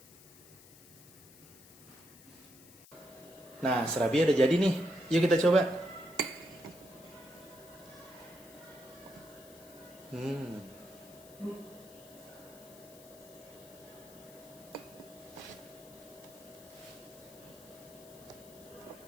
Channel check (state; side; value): noise; left; hiss, 21 dB below the sound